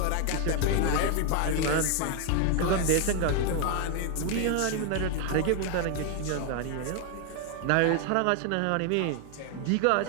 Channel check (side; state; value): both; different; correlation 0.01